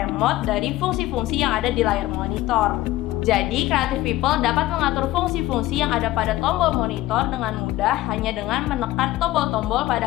dari fungsi-fungsi yang ada di layar monitor. Jadi Creative People dapat mengatur fungsi-fungsi yang ada pada tombol monitor dengan mudah hanya dengan menekan tombol-tombol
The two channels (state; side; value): quieter; right; 16.6 dB